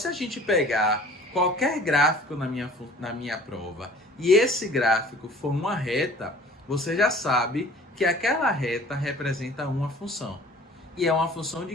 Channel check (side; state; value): both; normal; correlation 0.48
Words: a gente pegar qualquer gráfico na minha prova e esse gráfico for uma reta, você já sabe que aquela reta representa uma função. E é uma função